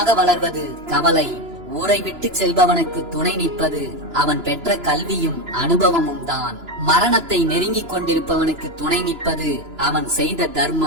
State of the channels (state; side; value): late; left; 2.9 ms